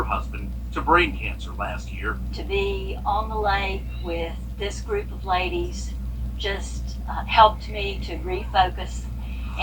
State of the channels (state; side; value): identical; both; correlation 1.00